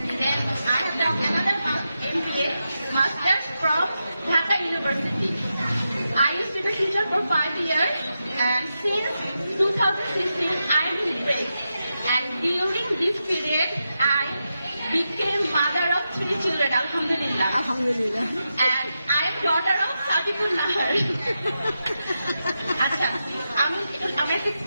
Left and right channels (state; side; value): inverted; both; correlation -0.88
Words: Then I have done another MBA masters from Dhaka University. I used to be a teacher for 5 years, and since 2016 I am in break. And during this period, I became mother of 3 children, Alhamdulillah. আলহামদুলিল্লাহ। And I am daughter of Sadipur Nahar. আচ্ছা, আমি একটা